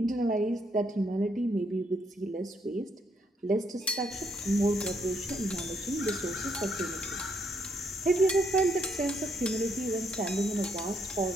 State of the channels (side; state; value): both; normal; correlation 0.73